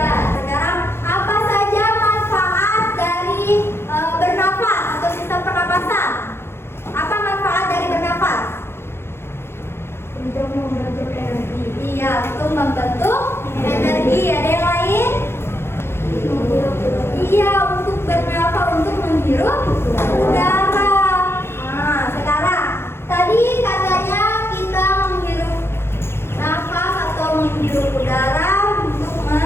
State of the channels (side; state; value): right; late; 0.12 ms